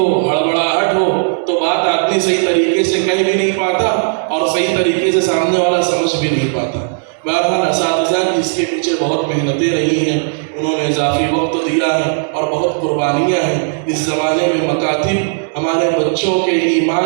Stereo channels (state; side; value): silent; left; digital silence